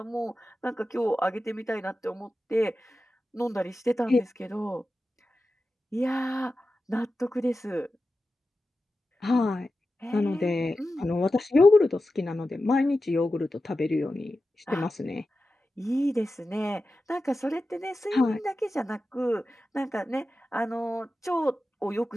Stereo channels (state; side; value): normal; both; correlation 0.93